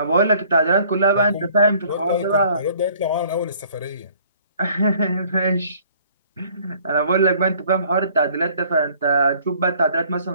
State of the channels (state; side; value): inverted; both; correlation -0.57